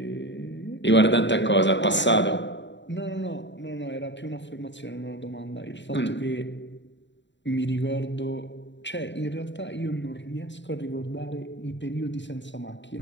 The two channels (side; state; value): right; late; 0.53 ms